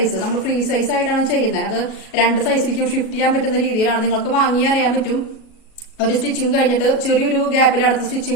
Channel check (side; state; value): right; late; 37 ms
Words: നമ്മൾ ഫ്രീ സൈസ് ആയിട്ടാണ് ചെയ്യുന്നത്. അത് 2 സൈസിലേക്കും ഷിഫ്റ്റ് ചെയ്യാൻ പറ്റുന്ന രീതിയിലാണ്. നിങ്ങൾക്ക് വാങ്ങി അറിയാൻ പറ്റും. ഒരു സ്റ്റിച്ചിങ് കഴിഞ്ഞിട്ട് ചെറിയൊരു ഗ്യാപ്പിൽ അടുത്ത